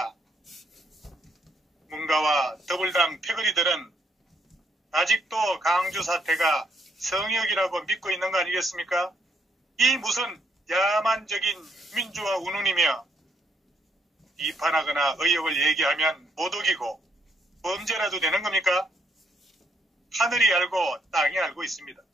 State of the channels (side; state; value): both; normal; correlation 0.72